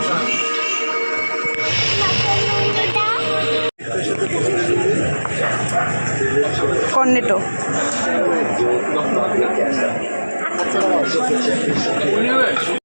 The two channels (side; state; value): both; inverted; correlation -1.00